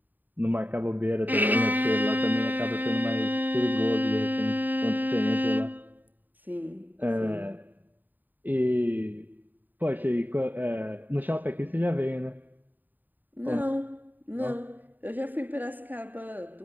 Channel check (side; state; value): left; late; 0.088 ms